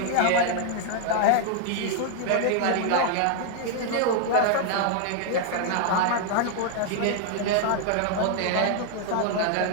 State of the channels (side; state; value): both; different; correlation 0.00